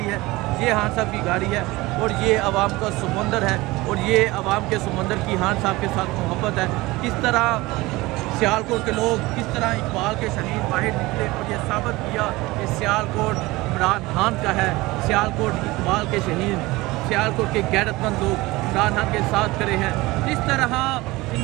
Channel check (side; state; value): left; quieter; 20.7 dB